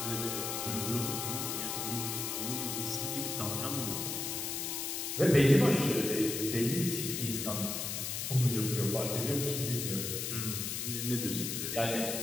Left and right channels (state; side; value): noise; left; hiss, 3 dB below the sound